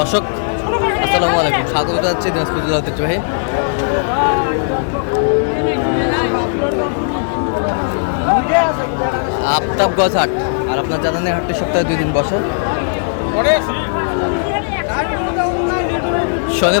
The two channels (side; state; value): right; silent; digital silence